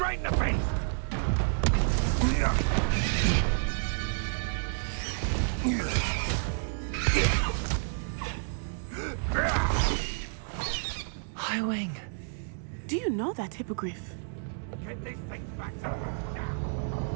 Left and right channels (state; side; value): silent; left; digital silence